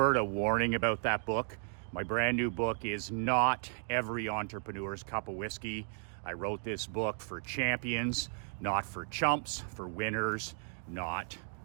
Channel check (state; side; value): silent; left; 55 dB below the other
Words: of warning about that book. My brand new book is not every entrepreneur's cup of whiskey. I wrote this book for champions, not for chumps, for winners, not